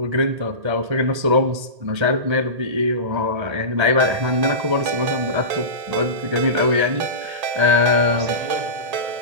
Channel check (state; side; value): late; left; 1.8 ms